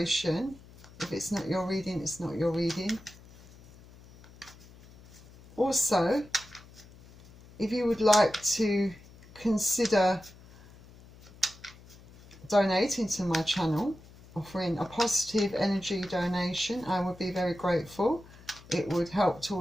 If it's not your reading, it's not your reading. Also, if you would like to consider donating to my channel, offering a positive energy donation, I would be very grateful. It would help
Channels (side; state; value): left; noise; hum, 22 dB below the sound